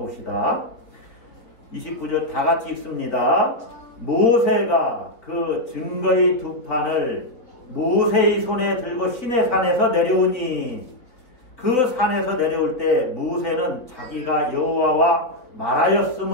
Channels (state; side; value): late; right; 3.7 ms